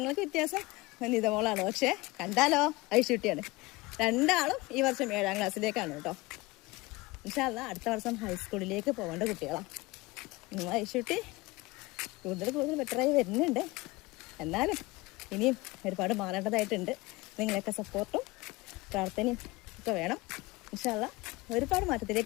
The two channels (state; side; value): quieter; right; 22.0 dB